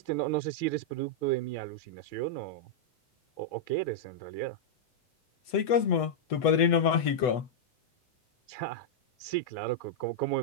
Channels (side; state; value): right; late; 8.1 ms